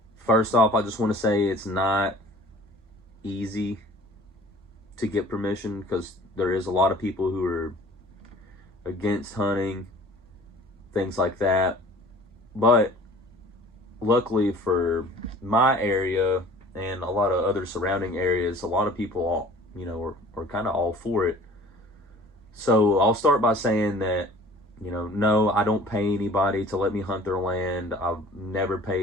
first off, I just want to say it's not easy to get permission because there is a lot of people who are against hunting, things like that. But luckily for my area and a lot of other surrounding areas, a lot of people, are kind of all for it. So I'll start by saying that, no, I don't pay anybody to let me hunt their land. I've never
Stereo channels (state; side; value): normal; both; correlation 0.48